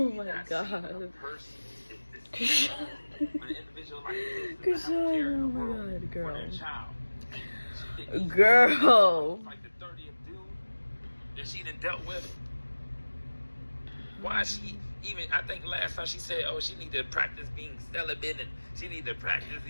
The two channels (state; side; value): inverted; both; correlation -1.00